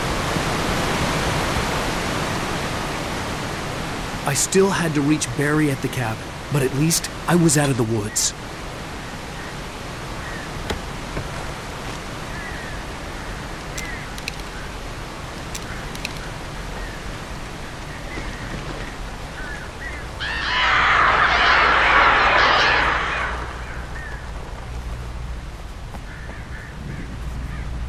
I still had to reach Barry at the cabin, but at least I was out of the woods.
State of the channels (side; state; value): both; identical; correlation 1.00